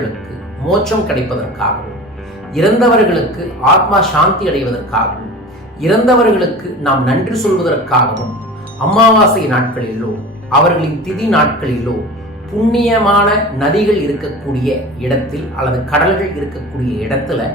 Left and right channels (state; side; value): normal; both; correlation 0.36